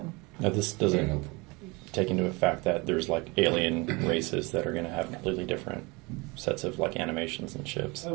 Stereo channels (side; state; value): left; quieter; 26.3 dB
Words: Now this doesn't take into effect that there's like alien races that are going to have completely different sets of like animations and ships.